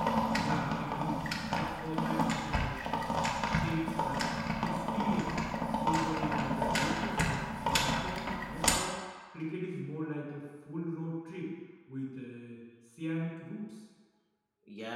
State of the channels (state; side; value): identical; both; correlation 1.00